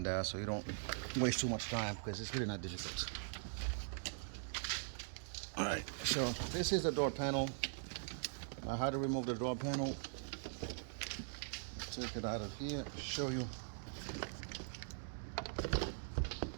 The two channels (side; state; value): left; silent; digital silence